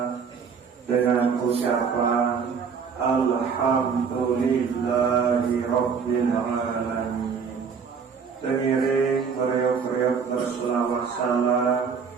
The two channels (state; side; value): quieter; left; 6.1 dB